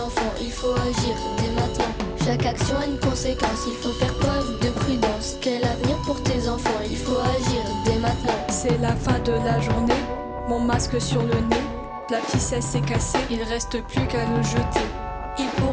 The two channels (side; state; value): both; identical; correlation 1.00